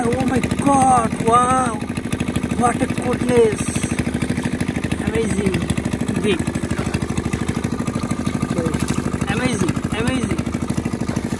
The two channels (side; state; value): both; identical; correlation 1.00